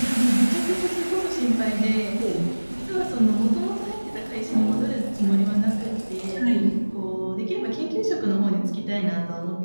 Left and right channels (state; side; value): inverted; both; correlation -1.00